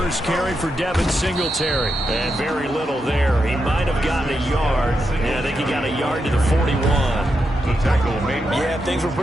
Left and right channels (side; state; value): both; normal; correlation 0.85